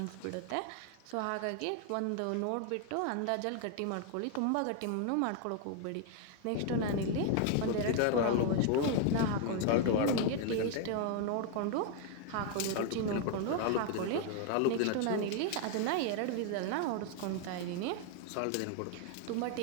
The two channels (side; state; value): both; different; correlation 0.00